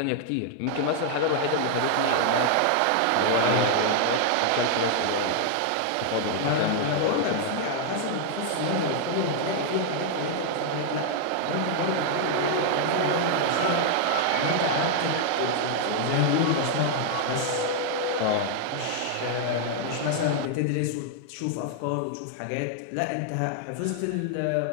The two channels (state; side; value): different; both; correlation 0.00